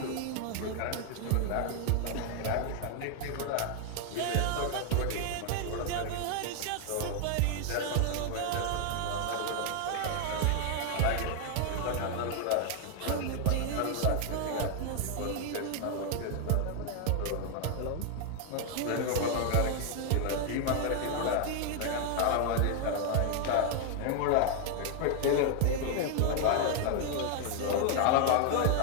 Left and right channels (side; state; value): both; different; correlation 0.00